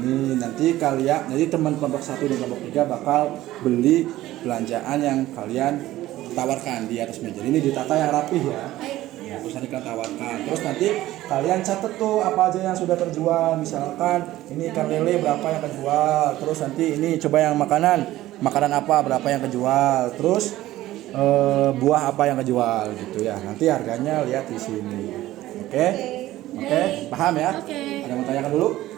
Nanti kalian, jadi teman kelompok 1 dan kelompok 3 bakal beli belanjaan yang kalian tawarkan di atas meja. Ini ditata yang rapih ya. Ya, terus nanti kalian tawarkan. Terus nanti kalian catat tuh apa aja yang sudah terjual. Misalkan ini ikan lele berapa yang kejual. Terus nanti ini coba yang makanan apa berapa yang kejual. Terus buah apa yang kejual gitu ya. Nanti harganya lihat di sini. Oke? Oke? Paham ya? Ada yang mau tanyakan dulu?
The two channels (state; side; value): quieter; left; 15.5 dB